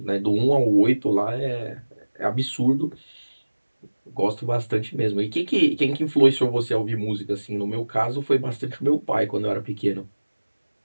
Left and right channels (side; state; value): both; inverted; correlation -1.00